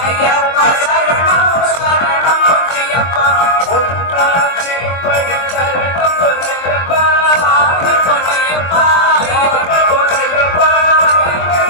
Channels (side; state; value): right; late; 23 ms